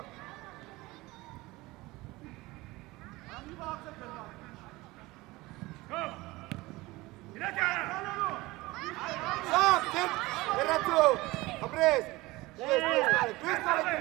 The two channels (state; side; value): quieter; left; 20.7 dB